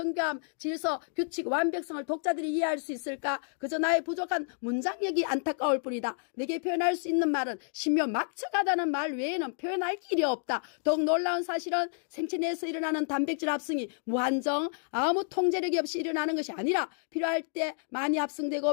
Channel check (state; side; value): silent; right; digital silence